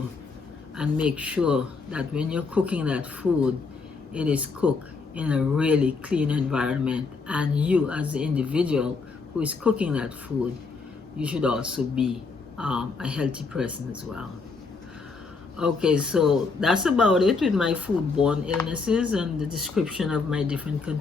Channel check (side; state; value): right; quieter; 4.4 dB